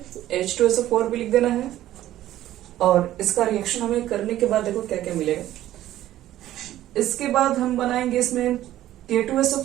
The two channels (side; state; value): left; quieter; 13.6 dB